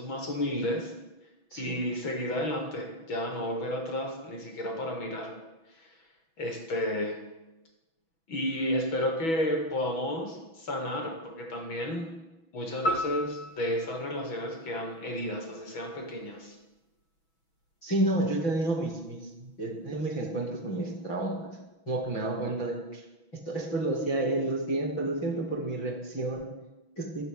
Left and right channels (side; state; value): right; late; 6.1 ms